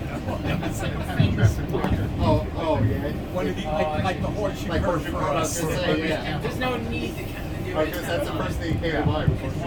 It was like a famous spot. Oh yeah. One of the like the horseshoe Like curve horseshoe for curve, I was us. gonna say, yeah. There's no need to kind of do it. Because that's the first thing you came to mind.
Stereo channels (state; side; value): identical; both; correlation 1.00